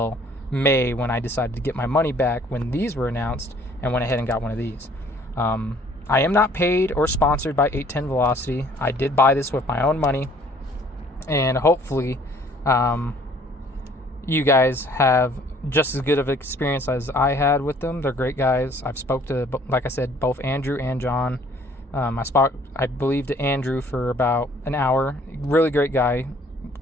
May, when I decided to get my money back when these were announced, and went ahead and got one of these. I am not paid or sponsored by 810 Velocity. I did buy this with my own money, and hopefully you guys have just as good of an experience as I had with them. They're great guys. I've spoke to, like I said, both Andrew and John. I believe, to Andrew for about an hour. Really great guy.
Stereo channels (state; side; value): normal; both; correlation 0.57